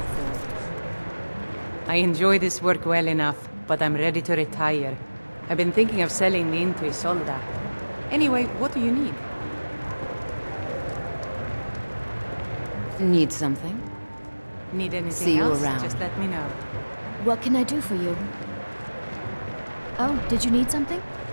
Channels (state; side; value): inverted; both; correlation -1.00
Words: I enjoy this work well enough, but I'm ready to retire. I've been thinking of selling me into Isolda. Anyway, what do you need? Need something? Need anything See you else? around. Just let me know. What can I do for you? Oh, did you need something?